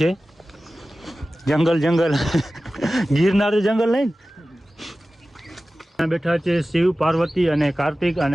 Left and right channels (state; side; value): normal; both; correlation 0.96